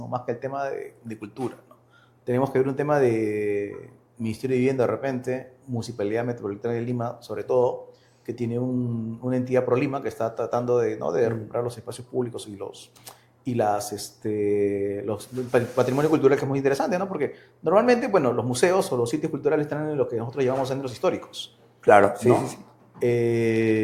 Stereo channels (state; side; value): identical; both; correlation 1.00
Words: más que el tema de cultura, ¿no? Tenemos que ver un tema de Ministerio de Vivienda de repente, Municipalidad Metropolitana de Lima, sobre todo, que tiene una entidad ProLima que está tratando de recuperar los espacios públicos y el patrimonio cultural, que es muy interesante, ¿no? Porque normalmente, bueno, los museos o los sitios culturales están en lo que nosotros llamamos centros históricos. Claro, ¿no? Sí.